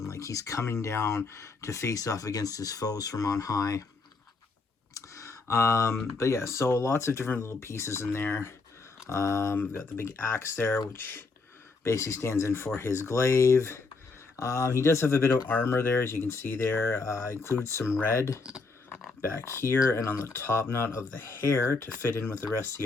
Like he's coming down to face off against his foes from on high. But yeah, so lots of different little pieces in there. We've got the big axe there, which basically stands in for his glaive. He does have a bit of armor there, as you can see there. Includes some red back here and on the top knot of the hair to fit in with the rest of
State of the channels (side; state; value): right; quieter; 4.0 dB